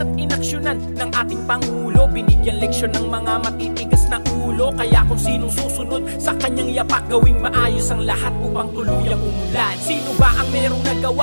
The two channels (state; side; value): inverted; both; correlation -1.00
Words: at inaksyonan ng ating Pangulo. Binigyan leksyon ng mga matitigas na ulo. Kaya kung sinong susunod sa kanyang yapak, gawing maayos ang lahat upang tuluyang umulan. Sino ba ang merong